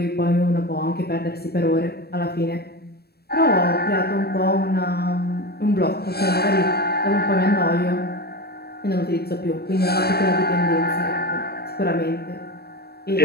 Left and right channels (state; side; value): late; right; 0.46 ms